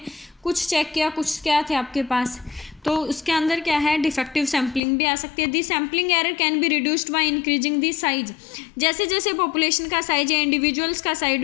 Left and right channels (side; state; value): right; drops out; at 4.8 s